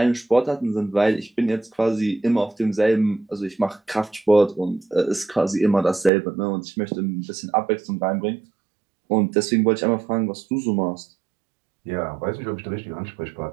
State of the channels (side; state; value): left; drops out; at 6.1 s